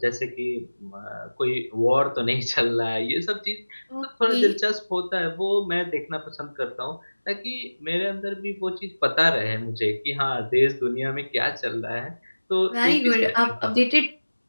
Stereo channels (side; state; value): both; inverted; correlation -1.00